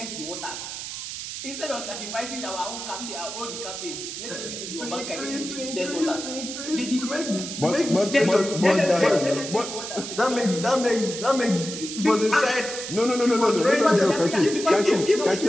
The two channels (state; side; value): noise; right; hiss, 7 dB below the sound